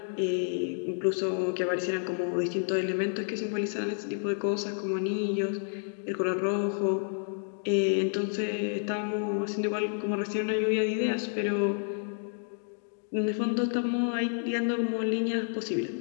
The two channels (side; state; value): right; silent; digital silence